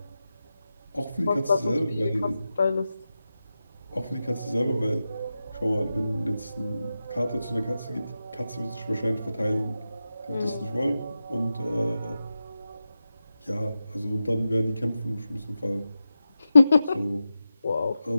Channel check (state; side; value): inverted; both; correlation -0.91